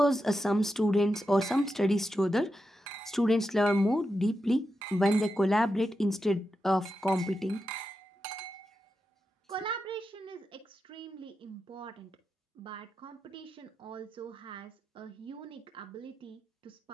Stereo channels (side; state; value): both; normal; correlation 0.88